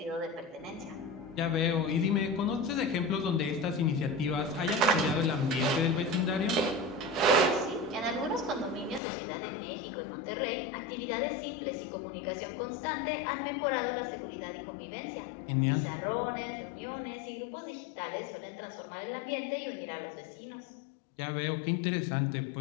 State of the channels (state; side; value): drops out; right; at 9.0 s